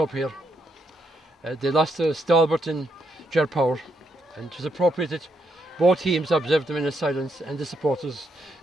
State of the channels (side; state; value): both; normal; correlation 0.78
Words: here. They lost to Stalbert and Ger Power, and it was appropriate that both teams observed them in silence and the supporters